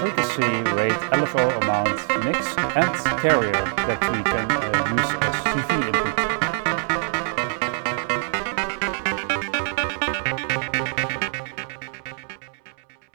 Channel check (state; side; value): silent; left; 63 dB below the other